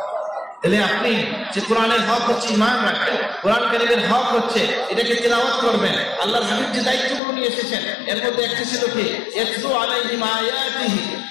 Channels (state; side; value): drops out; right; at 7.2 s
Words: তাহলে আপনি যে কোরআনের হক হচ্ছে ঈমান রাখবেন, কোরআন কারীমের হক হচ্ছে এটাকে তিলাওয়াত করবেন। আল্লাহর হাবিব যে দায়িত্বগুলো নিয়ে এসেছেন এর মধ্যে একটা ছিল কি ইয়াতলু আলাইহিম আয়াতিহি,